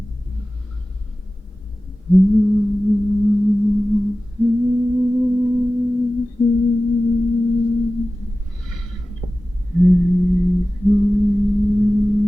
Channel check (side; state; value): both; normal; correlation 0.96